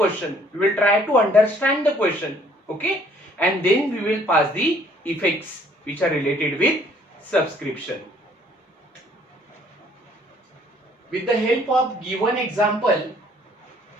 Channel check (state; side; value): normal; both; correlation 0.60